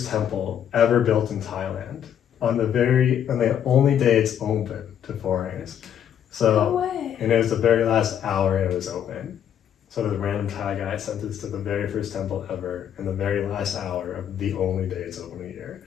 temple ever built in Thailand. On the only day it's open to foreigners. So, No way. and it was the very last hour it was open. So the random Thai guy sent us to the very first temple ever in the very last hour of the only day it's open a year.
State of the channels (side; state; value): right; quieter; 9.4 dB